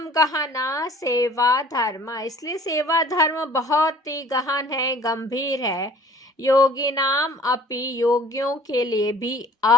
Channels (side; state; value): both; normal; correlation 0.50